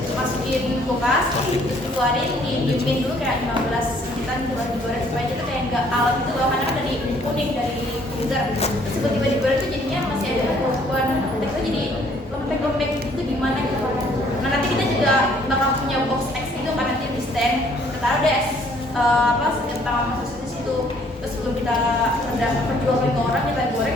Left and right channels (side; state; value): both; normal; correlation 0.62